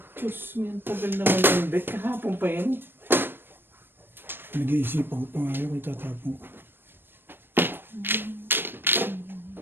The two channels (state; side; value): late; left; 0.099 ms